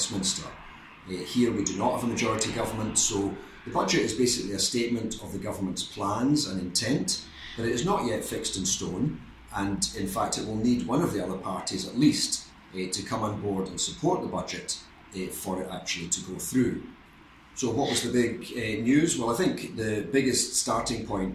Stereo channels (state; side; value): identical; both; correlation 1.00